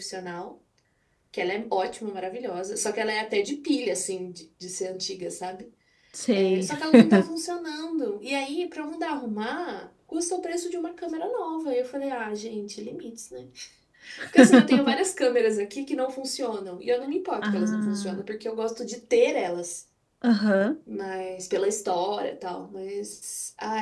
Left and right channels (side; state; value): both; identical; correlation 1.00